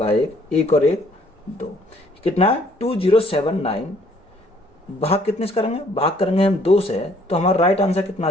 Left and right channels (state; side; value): normal; both; correlation 0.61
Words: 1, 1 और 1 2, कितना है 2079। भाग कितने से करेंगे, भाग करेंगे हम 2 से, तो हमारा राइट आंसर कितना आ